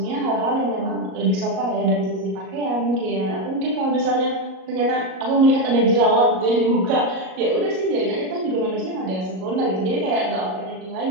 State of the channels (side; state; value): left; late; 38 ms